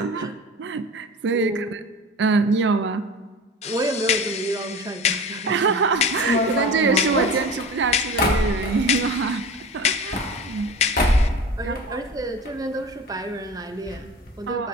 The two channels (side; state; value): both; normal; correlation 0.34